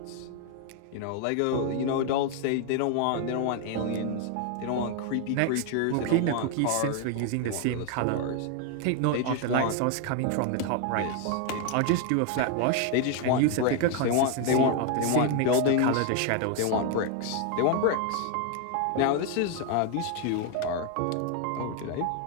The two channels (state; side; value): different; both; correlation 0.01